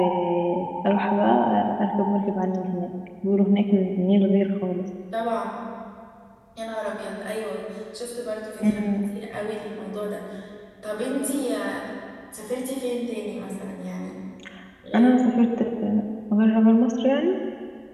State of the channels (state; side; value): identical; both; correlation 1.00